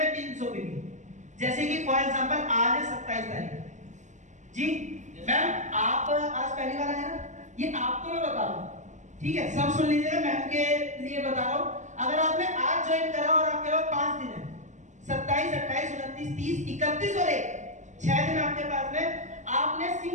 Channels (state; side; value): late; left; 0.35 ms